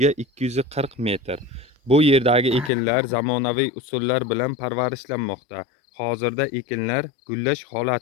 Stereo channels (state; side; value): drops out; right; at 2.7 s